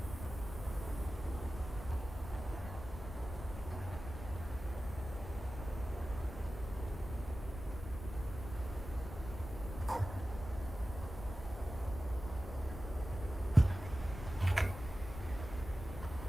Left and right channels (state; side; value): noise; left; rumble, 9 dB below the sound